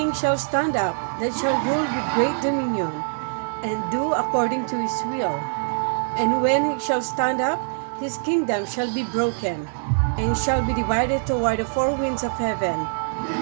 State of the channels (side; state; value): left; silent; digital silence